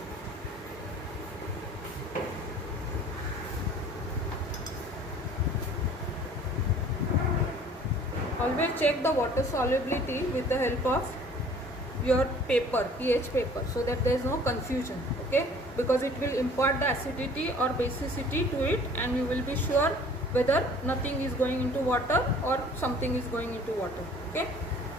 Always check the water solubility with the help of your paper, pH paper, so that there is no confusion. Okay, because it will impart the acidity or basicity to it, and you will be sure whether nothing is going into water or something is going into water. Okay.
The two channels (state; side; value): normal; both; correlation 0.51